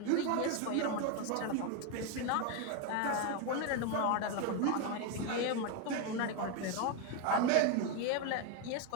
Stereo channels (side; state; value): both; different; correlation 0.02